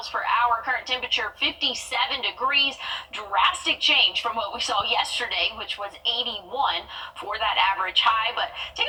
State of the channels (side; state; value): both; identical; correlation 1.00